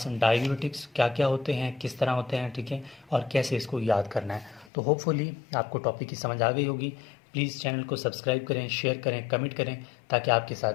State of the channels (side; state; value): right; drops out; at 4.7 s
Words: डायूरेटिक्स क्या क्या होते हैं, किस तरह होते हैं, ठीक है, और कैसे इसको याद करना है। तो होपफुली आपको टॉपिक की समझ आ गई होगी। प्लीज़ चैनल को सब्सक्राइब करें, शेयर करें, कमेंट करें, ताकि आपके